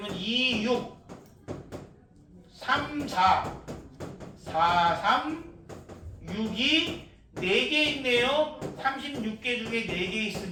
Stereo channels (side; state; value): both; identical; correlation 1.00